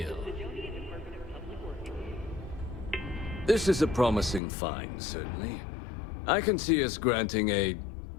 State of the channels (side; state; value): right; drops out; at 4.4 s